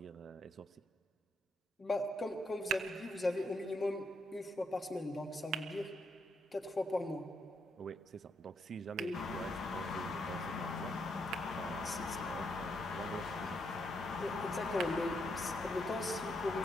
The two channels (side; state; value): both; normal; correlation 0.78